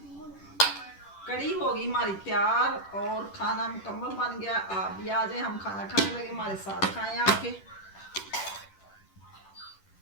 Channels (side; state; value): right; late; 10 ms